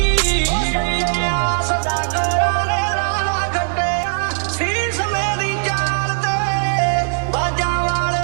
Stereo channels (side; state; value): left; silent; digital silence